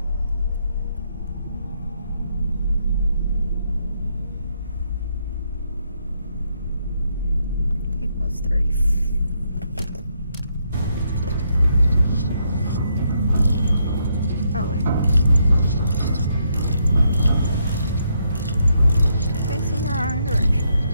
Equals 30. Oh wait. Facing the wrong direction.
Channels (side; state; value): both; inverted; correlation -0.76